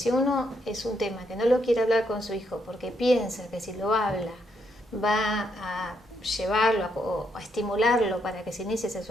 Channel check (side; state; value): both; normal; correlation 0.76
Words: uno es un tema que no lo quiere hablar con su hijo porque piensa que si lo habla va a llevarlo o a estimularlo para que se inicie